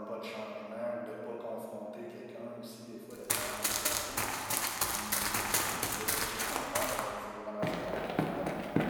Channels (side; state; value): both; identical; correlation 1.00